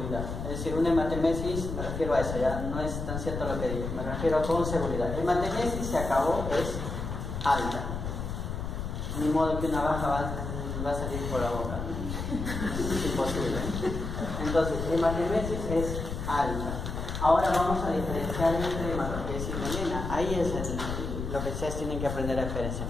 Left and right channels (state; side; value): noise; left; rumble, 5 dB below the sound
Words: Es decir, una hematemesis, me refiero a eso, ya no es tan cierto lo que digo, me refiero con seguridad. La hematemesis se acabó, es alta. Ni modo que una baja va a salir por la boca, ¿no? Es imposible. Entonces, hematemesis es alta. Ahora vamos a diferenciar entre hematoquesia y melena. Ahí es lo que ustedes tienen que aprender a diferenciar.